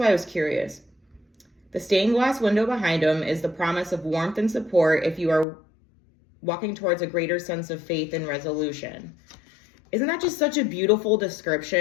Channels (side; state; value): right; drops out; at 5.5 s